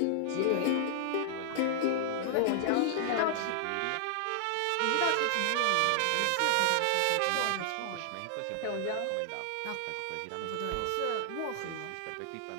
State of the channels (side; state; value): both; different; correlation -0.01